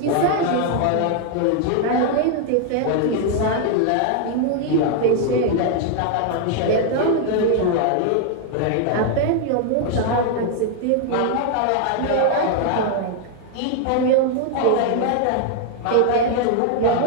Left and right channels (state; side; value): different; both; correlation 0.00